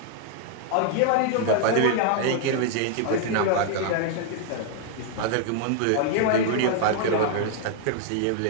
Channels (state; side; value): different; both; correlation 0.00